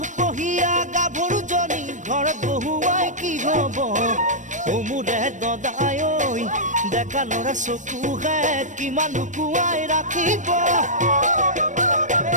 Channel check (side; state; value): left; late; 0.36 ms